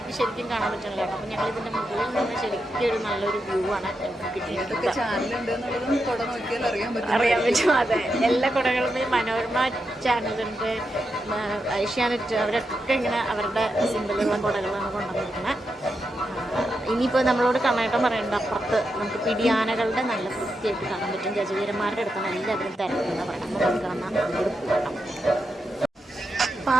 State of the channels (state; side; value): normal; both; correlation 0.86